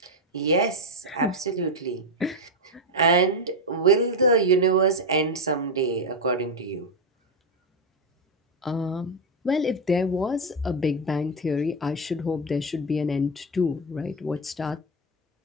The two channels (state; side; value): normal; both; correlation 0.07